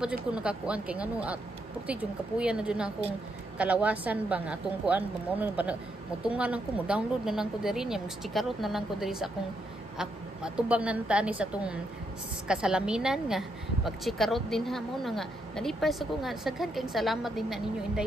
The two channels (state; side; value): normal; both; correlation 0.78